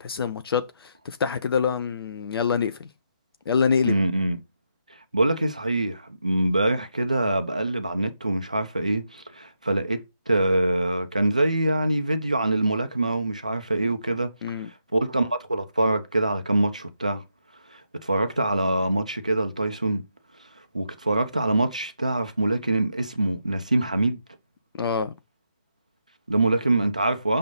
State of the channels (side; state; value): both; inverted; correlation -0.82